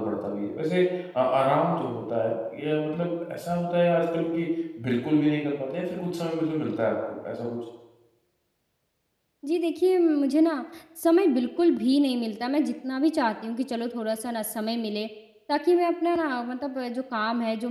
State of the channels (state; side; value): identical; both; correlation 1.00